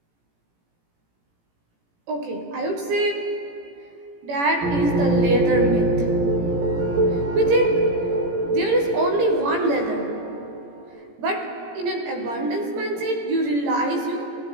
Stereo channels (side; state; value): left; late; 18 ms